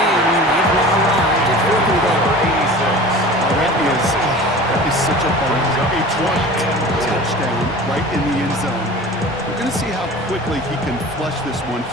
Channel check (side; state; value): both; normal; correlation 0.39